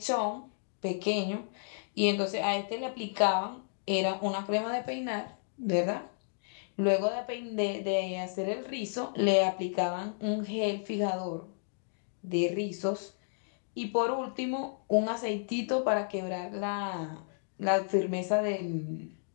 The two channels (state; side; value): silent; right; digital silence